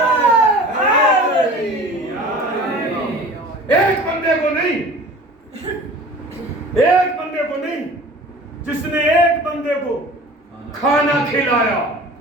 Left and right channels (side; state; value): both; normal; correlation 0.42